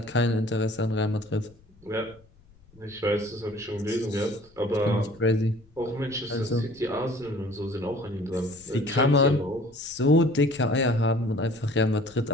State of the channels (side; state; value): left; noise; rumble, 28 dB below the sound